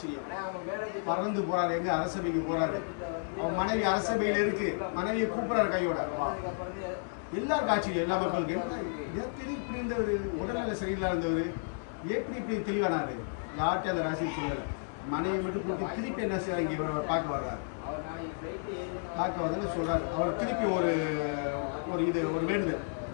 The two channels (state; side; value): silent; right; 56 dB below the other